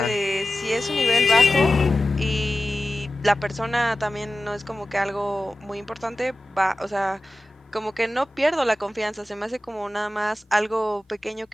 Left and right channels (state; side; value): normal; both; correlation 0.95